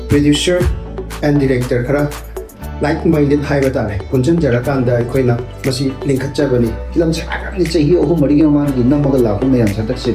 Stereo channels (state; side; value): identical; both; correlation 1.00